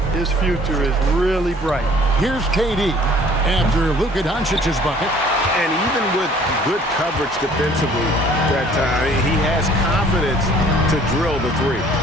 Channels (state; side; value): normal; both; correlation 0.55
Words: his future is really bright. Here's KD after Luka Doncic's bucket. And even with good coverage defensively that time, he has confidence to drill the three.